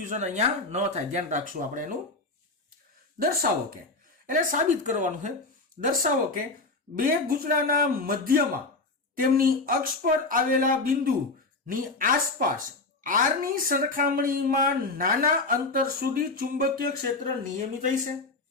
અહીંયા ન થાય, ધ્યાન રાખશું આપણે એનું. દર્શાવો કે, એટલે સાબિત કરવાનું છે. દર્શાવો કે બે ગૂંચળાના મધ્યમાં તેમની અક્ષ પર આવેલા બિંદુની આસપાસ r ની સરખામણીમાં નાના અંતર સુધી ચુંબકીય ક્ષેત્ર નિયમિત હશે.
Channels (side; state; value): right; quieter; 3.4 dB